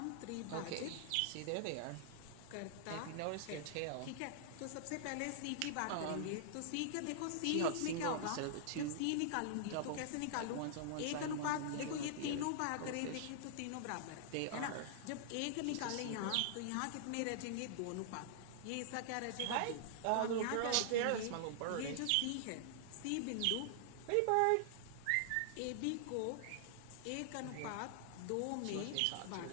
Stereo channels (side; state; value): both; different; correlation -0.01